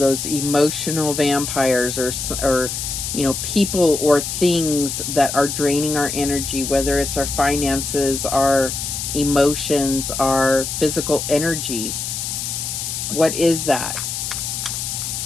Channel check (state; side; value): noise; left; hiss, 4 dB below the sound